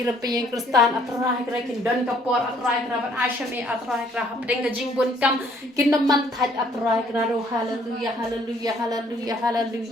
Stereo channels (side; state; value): both; normal; correlation 0.63